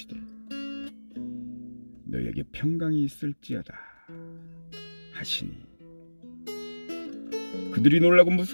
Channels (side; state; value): both; inverted; correlation -1.00